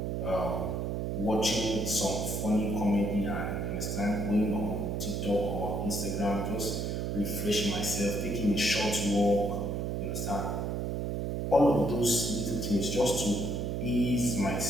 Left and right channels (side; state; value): right; noise; hum, 1 dB below the sound